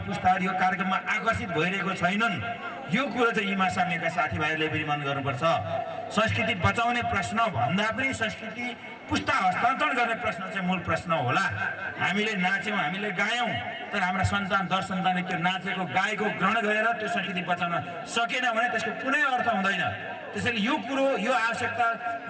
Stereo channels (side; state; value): both; identical; correlation 1.00